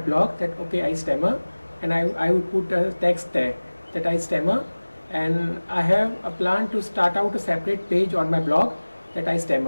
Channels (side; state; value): both; inverted; correlation -1.00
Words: that okay, I stammer, and I would put a text there that I stammer, and I have a plan to start out a separate page on my blog that I